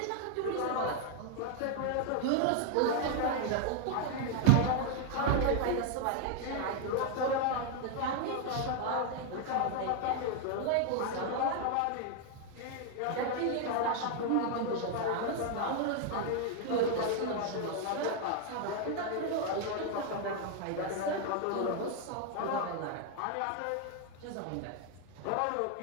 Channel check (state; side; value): different; both; correlation 0.00